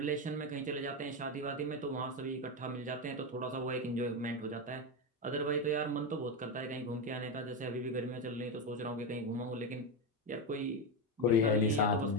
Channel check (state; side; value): normal; both; correlation 0.12